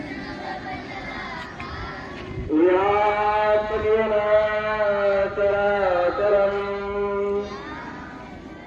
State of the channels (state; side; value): identical; both; correlation 1.00